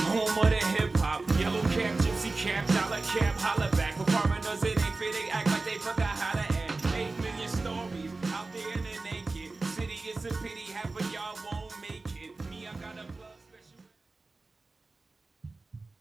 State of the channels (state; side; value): quieter; left; 3.5 dB